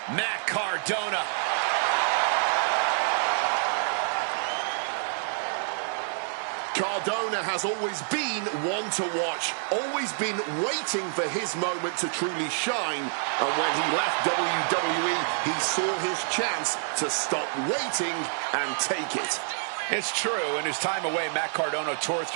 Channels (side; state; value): left; silent; digital silence